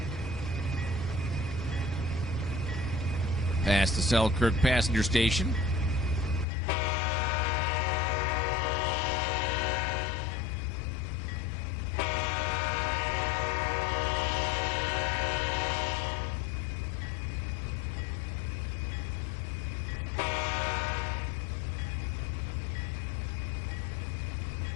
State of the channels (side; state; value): right; drops out; at 6.5 s